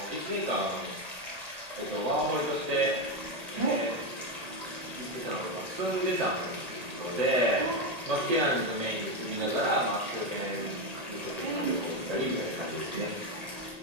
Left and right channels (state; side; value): late; left; 1.8 ms